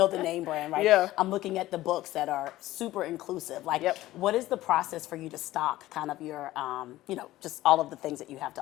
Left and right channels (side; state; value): right; quieter; 16.0 dB